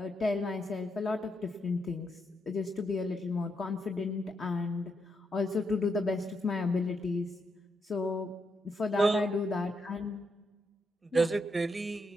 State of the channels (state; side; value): normal; both; correlation 0.80